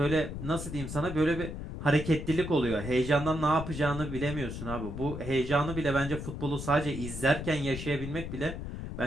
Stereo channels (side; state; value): left; noise; rumble, 7 dB below the sound